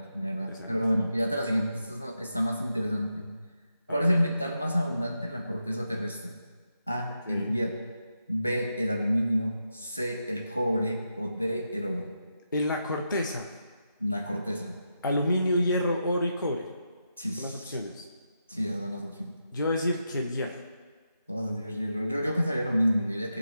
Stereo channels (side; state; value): both; inverted; correlation -0.86